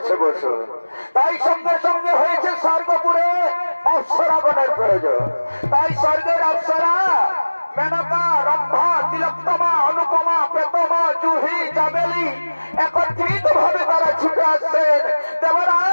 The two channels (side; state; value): both; inverted; correlation -1.00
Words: বসু। তাই সঙ্গে সঙ্গে হয়েছে স্বর্গপুরে অপ্সরাগণের প্রয়োজন। তাই স্বর্গের অপ্সরা মেনকা, রম্ভা, তিলোত্তমা, অনুপমা, প্রেতমা, জুহি, চামেলি একত্রিত ভাবে তারা ছুটে আসছেন